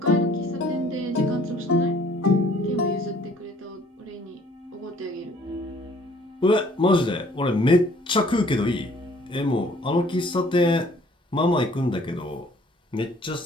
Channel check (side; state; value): both; normal; correlation 0.57